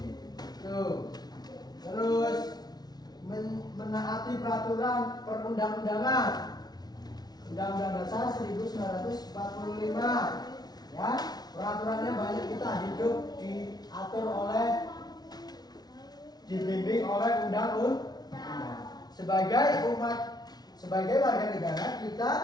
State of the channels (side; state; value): right; late; 0.19 ms